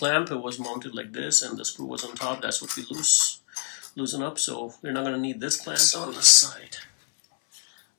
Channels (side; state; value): right; silent; 61 dB below the other